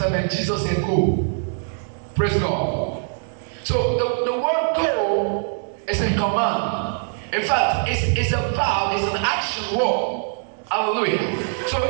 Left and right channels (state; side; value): silent; left; digital silence